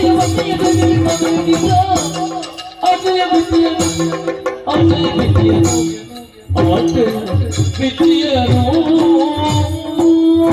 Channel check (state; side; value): identical; both; correlation 1.00